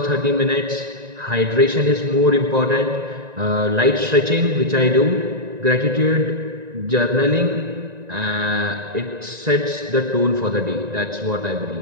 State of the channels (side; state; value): left; late; 1.9 ms